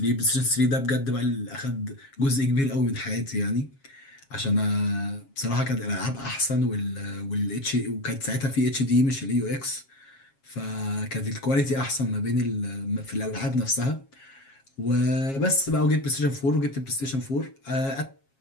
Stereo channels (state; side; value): late; right; 7.4 ms